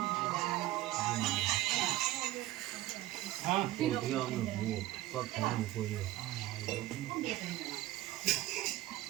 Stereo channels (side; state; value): left; quieter; 16.0 dB